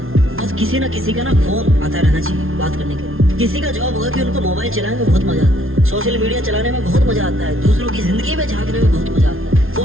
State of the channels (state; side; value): late; left; 0.61 ms